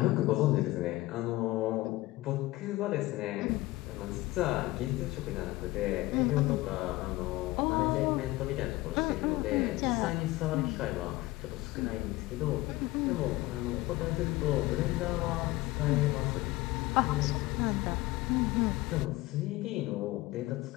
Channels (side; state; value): right; quieter; 19.1 dB